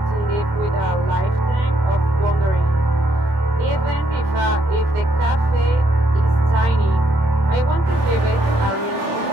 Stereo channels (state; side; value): late; left; 26 ms